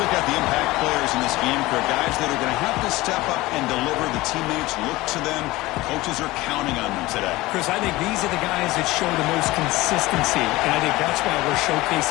at the impact players in this game. For guys that are going to have to step up and deliver. The teammates look to them. Coaches are counting on them today. Chris, I think these are the guys that show the most consistency, and I think that's why we're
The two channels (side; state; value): right; quieter; 19.4 dB